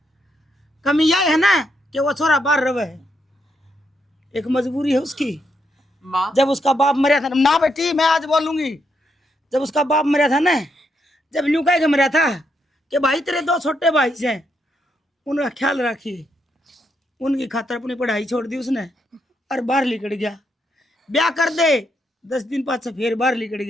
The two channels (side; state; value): both; normal; correlation 0.78